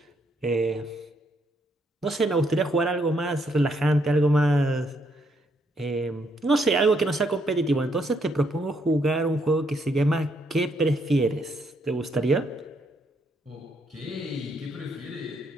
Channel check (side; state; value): both; normal; correlation 0.74